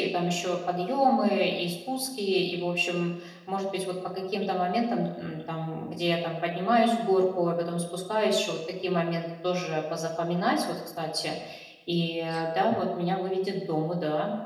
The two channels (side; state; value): both; identical; correlation 1.00